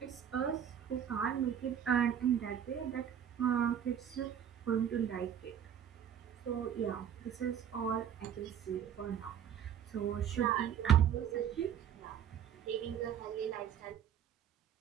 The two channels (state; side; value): quieter; left; 9.0 dB